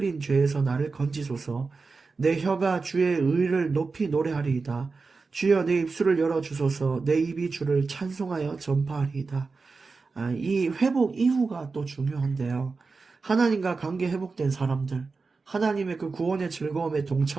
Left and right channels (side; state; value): left; quieter; 4.3 dB